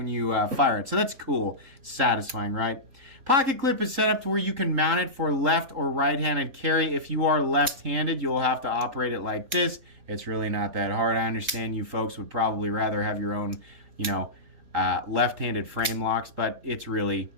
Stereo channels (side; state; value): left; late; 3.8 ms